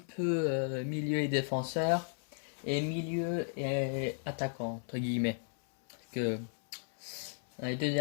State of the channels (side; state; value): right; silent; 55 dB below the other